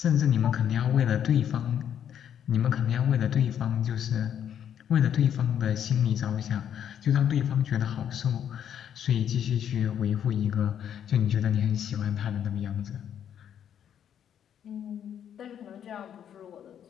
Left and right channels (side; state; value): right; quieter; 9.3 dB